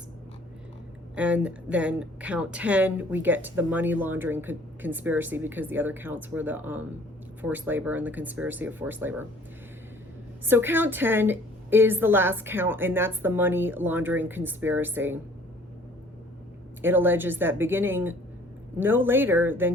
And then count 10, we get to the money laundering conspiracy, because the other counts were the forced labor and the conspiracy of forced labor. So count 10 is the last count, and that's the money laundering conspiracy. It alleges that beginning no later than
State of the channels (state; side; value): normal; both; correlation 0.54